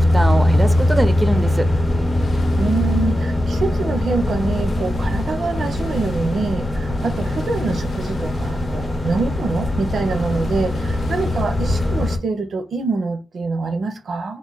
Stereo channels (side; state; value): both; normal; correlation 0.89